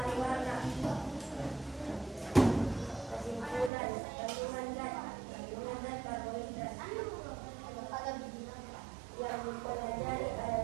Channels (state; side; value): drops out; left; at 3.7 s